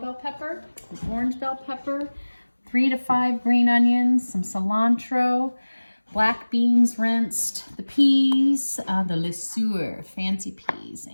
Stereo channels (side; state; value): both; inverted; correlation -1.00